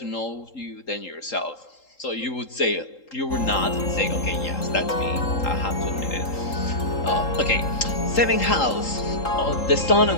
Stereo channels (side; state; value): right; late; 3.8 ms